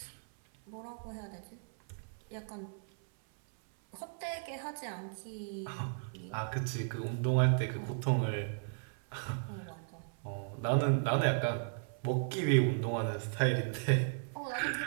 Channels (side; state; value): left; silent; 54 dB below the other